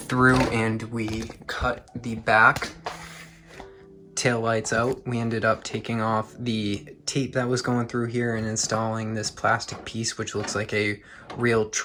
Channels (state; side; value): identical; both; correlation 1.00